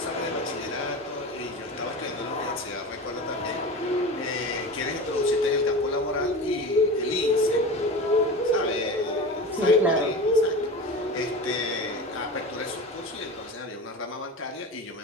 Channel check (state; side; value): normal; both; correlation 0.30